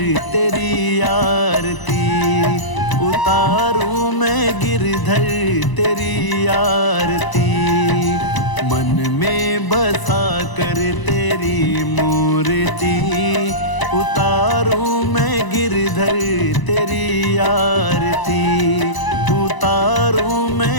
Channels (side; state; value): right; late; 1.0 ms